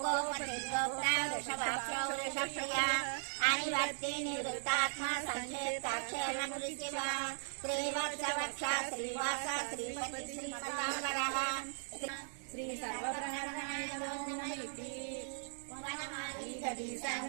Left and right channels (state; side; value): silent; left; 52 dB below the other